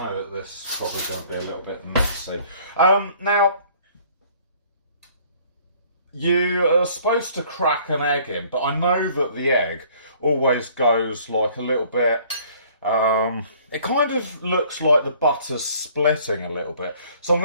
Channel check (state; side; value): inverted; both; correlation -0.57